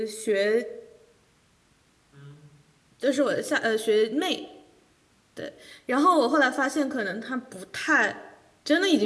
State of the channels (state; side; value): identical; both; correlation 1.00